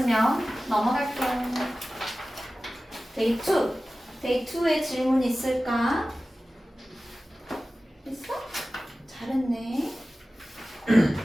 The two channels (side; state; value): both; normal; correlation 0.96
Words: 넘어갈게요. 데이 2, 데이 2의 질문 있을까? 있어? 잘했네.